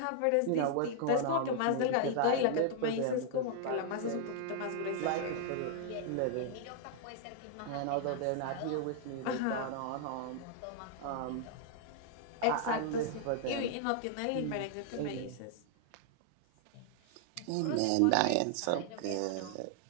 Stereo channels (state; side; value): different; both; correlation -0.01